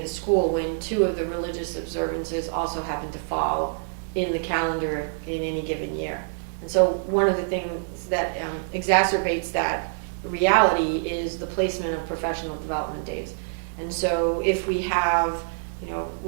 the school, when 2 of the religious observances also happen to fall in the calendar in any given year. And so one of the things that exacerbates that reality is the placement of professional development days. And so if we have,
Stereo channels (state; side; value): silent; left; 61 dB below the other